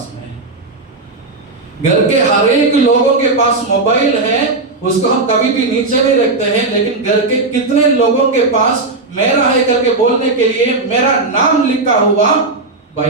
में है? घर के हर एक लोगों के पास मोबाइल है, उसको हम कभी भी नीचे नहीं रखते हैं, लेकिन घर के कितने लोगों के पास मेरा है करके बोलने के लिए मेरा नाम लिखा हुआ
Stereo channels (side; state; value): left; quieter; 3.4 dB